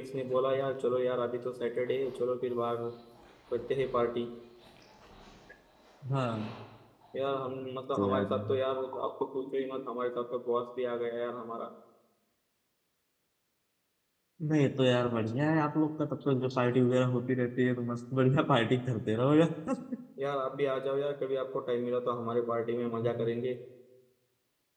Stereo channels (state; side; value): identical; both; correlation 1.00